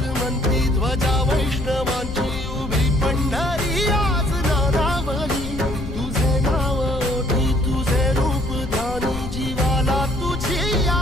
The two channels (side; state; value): left; noise; rumble, 9 dB below the sound